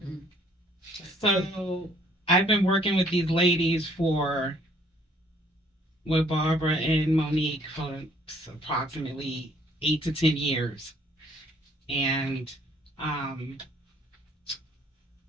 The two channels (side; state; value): both; normal; correlation 0.62